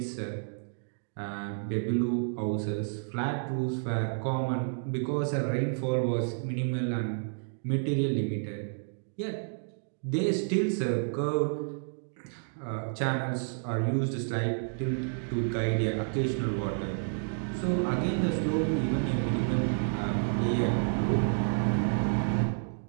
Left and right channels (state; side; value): silent; left; digital silence